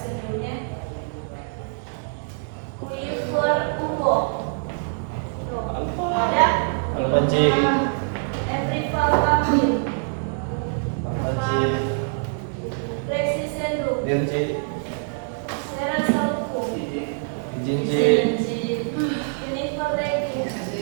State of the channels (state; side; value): silent; left; digital silence